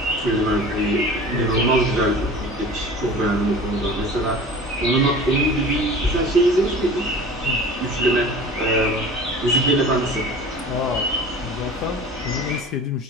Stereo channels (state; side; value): normal; both; correlation 0.40